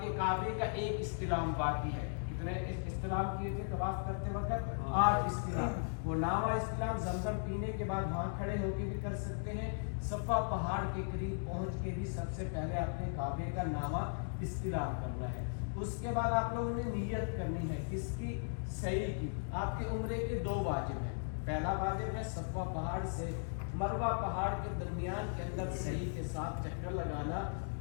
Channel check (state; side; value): silent; right; digital silence